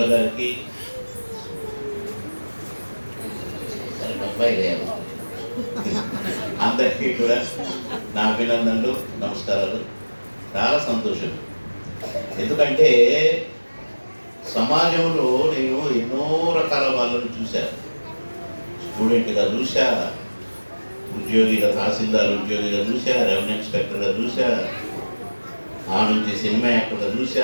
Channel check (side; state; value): both; inverted; correlation -1.00